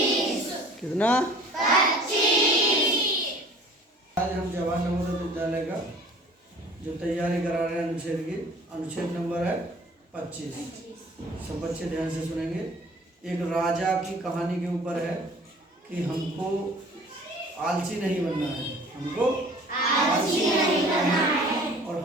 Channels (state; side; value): normal; both; correlation 0.48